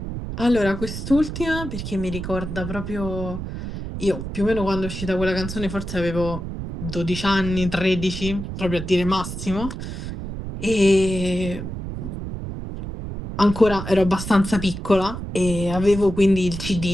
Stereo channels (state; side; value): noise; right; rumble, 7 dB below the sound